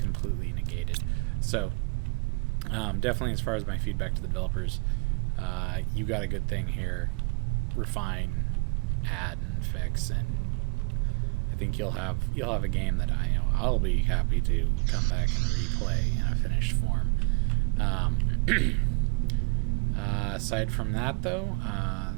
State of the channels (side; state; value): left; quieter; 30.6 dB